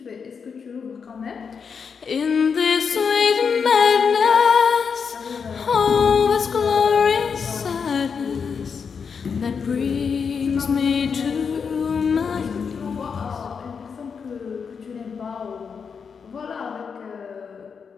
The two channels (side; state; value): right; quieter; 6.1 dB